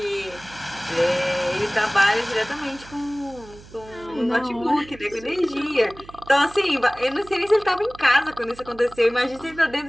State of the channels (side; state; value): right; noise; hum, 20 dB below the sound